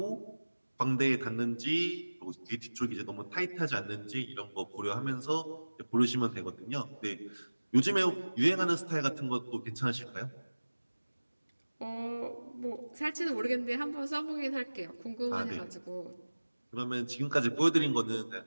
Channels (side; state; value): both; inverted; correlation -1.00